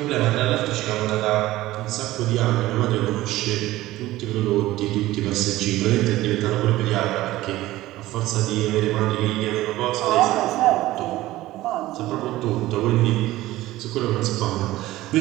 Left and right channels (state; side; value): quieter; left; 16.6 dB